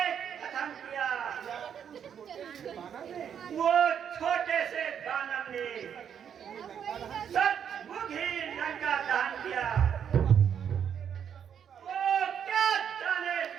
कथन किया। वो छोटे से दानव ने सचमुच ही लंका दहन किया। वो क्या जाने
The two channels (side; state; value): left; quieter; 8.3 dB